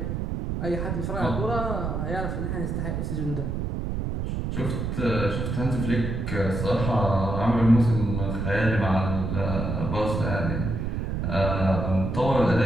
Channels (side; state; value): right; noise; rumble, 2 dB below the sound